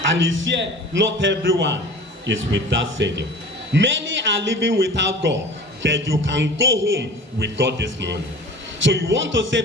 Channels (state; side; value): normal; both; correlation 0.40